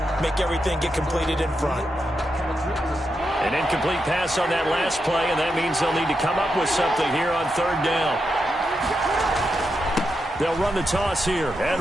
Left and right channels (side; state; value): both; normal; correlation 0.85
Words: Make everything get completed in front. An incomplete pass on that last play, and that means they'll need to come up with something here on 3rd down. They'll run the toss here.